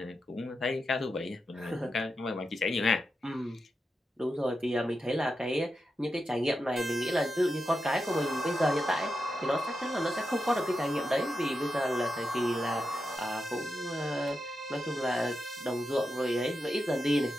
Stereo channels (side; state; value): both; normal; correlation 0.88